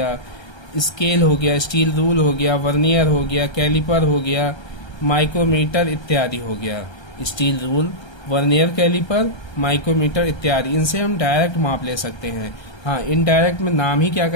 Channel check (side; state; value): right; late; 1.3 ms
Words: स्टील रूल हो गया, वर्नियर हो गया, कैलिपर हो गया, माइक्रोमीटर इत्यादि हो गया। Steel rule, vernier calliper, micrometer इत्यादि, इनसे हम डायरेक्ट माप ले सकते हैं। हाँ, इनडायरेक्ट में नाम ही क्या